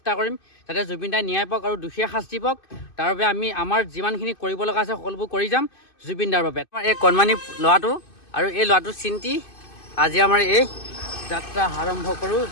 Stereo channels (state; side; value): late; right; 2.5 ms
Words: কৰিম, যাতে জুবিন দাৰ ন্যায় পাওক আৰু দোষীয়ে শাস্তি পাওক। তাৰ বাবে আমি আমাৰ যিমানখিনি কৰিব লগা আছে সকলোবোৰ কৰি যাম জুবিন দাৰ বাবে। আমাৰ এই কণমানি ল'ৰাটো আৰু এই ল'ৰাটোৰ চিন্তি আজি আমাৰ এই যাত্ৰা আৰম্ভ কৰোঁ,